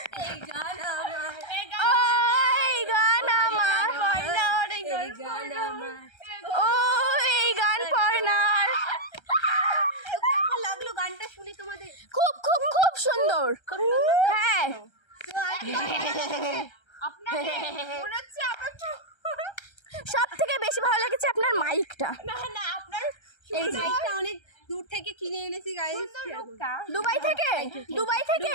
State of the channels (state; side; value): late; right; 1.3 ms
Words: এই গান আমার, এই গান আমার, এই গান আমার। ও এই গান পর্ণার। কেমন লাগলো গানটা শুনে তোমাদের? খুব খুব খুব সুন্দর। হ্যাঁ সব থেকে বেশি ভালো লেগেছে আপনার মাইকটা। না আপনার এই যে মাইকটা অনেক দূর থেকে কিনে এনেছি গাইস। দুবাই থেকে? দুবাই